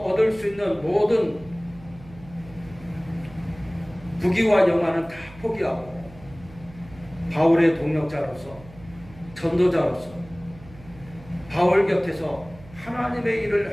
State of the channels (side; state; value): right; noise; hum, 20 dB below the sound